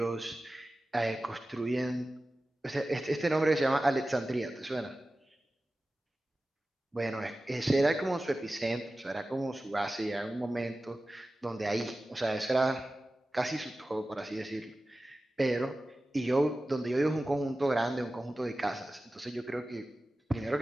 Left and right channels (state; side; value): normal; both; correlation 0.95